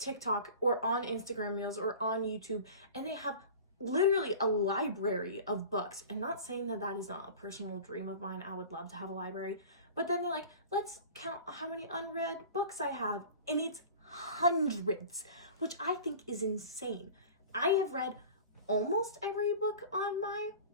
or on Instagram Reels or on YouTube, and they have literally a library of books. And not saying that that is not a personal dream of mine. I would love to have a library. But then they're like, let's count how many unread books I have. And it's hundreds, which I think is insane. I have read almost every book on my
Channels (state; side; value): inverted; both; correlation -0.39